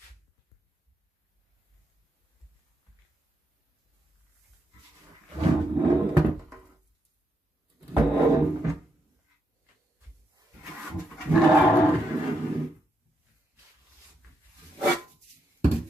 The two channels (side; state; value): both; normal; correlation 0.81